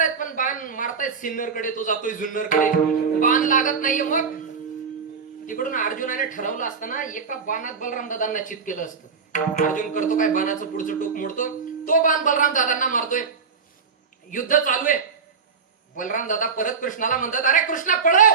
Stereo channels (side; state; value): left; quieter; 5.6 dB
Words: मारतायत सिन्नरकडे, तो जातोय जुन्नरकडे, बाण लागत नाहीये. मग तिकडून अर्जुनाने ठरवलं असताना एका बाणात बलराम दादांना चित केलं असतं. अर्जुन करतो काय, बाणाचं पुढचं टोक मोडतो, तो बाण बलराम दादांना मारतोय. युद्ध चालू आहे. बलराम दादा परत कृष्णाला म्हणतात, अरे कृष्णा